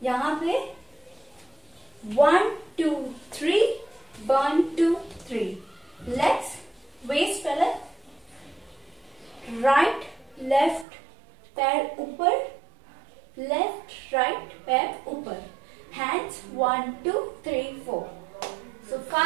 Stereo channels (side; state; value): left; drops out; at 10.9 s